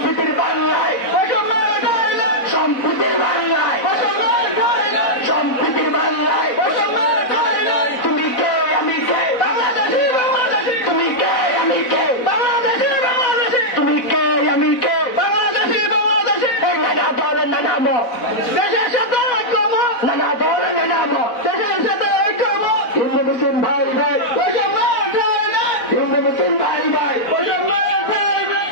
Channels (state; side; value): late; right; 4.0 ms